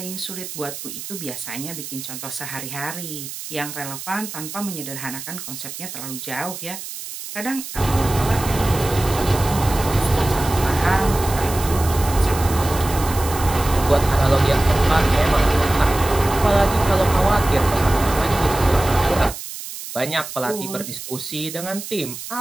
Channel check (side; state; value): right; noise; hiss, 10 dB below the sound